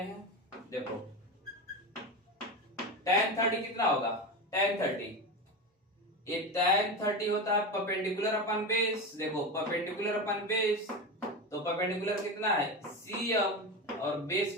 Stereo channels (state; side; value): normal; both; correlation 0.21